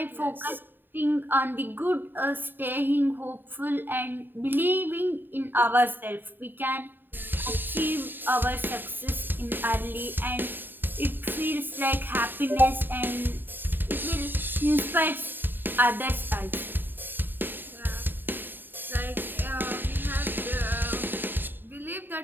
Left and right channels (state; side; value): late; left; 0.093 ms